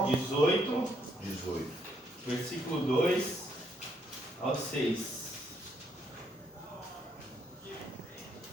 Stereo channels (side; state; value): both; normal; correlation 0.72